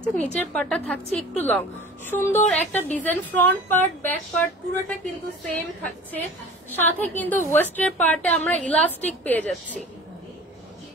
নিচের পার্টটা থাকছে একটু লং। সুন্দর একটা design, front part back part পুরোটা কিন্তু সেম থাকছে। সাথে কিন্তু ওয়েস্টের পার্টে আমরা ইলাস্টিক পেয়ে যাচ্ছি,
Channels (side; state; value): both; normal; correlation 0.41